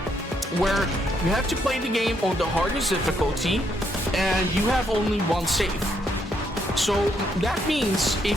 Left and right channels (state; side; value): normal; both; correlation 0.74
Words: where you have to play the game on the hardest difficulty and you have only 1 save. So that means